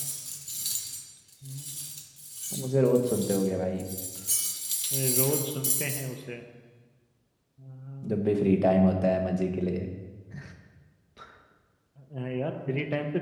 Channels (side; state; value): both; identical; correlation 1.00